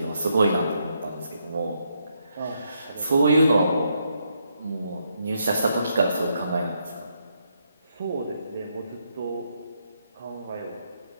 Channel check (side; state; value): both; inverted; correlation -0.78